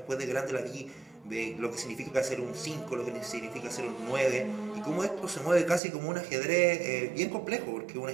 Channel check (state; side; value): drops out; left; at 5.8 s